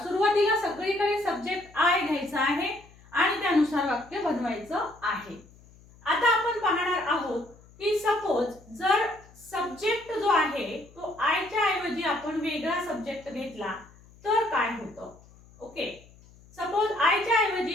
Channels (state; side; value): noise; left; hum, 25 dB below the sound